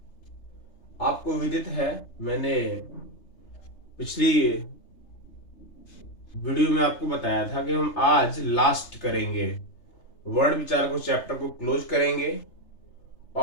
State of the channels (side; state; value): right; late; 3.3 ms